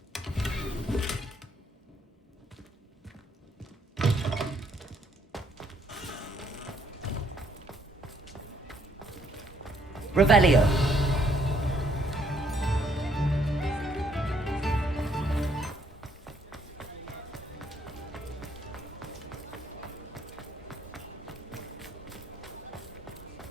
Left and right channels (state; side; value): normal; both; correlation 0.69